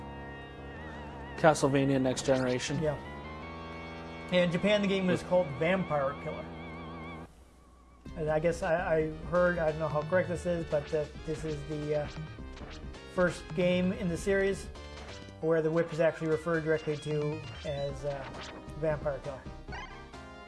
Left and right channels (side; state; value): both; identical; correlation 1.00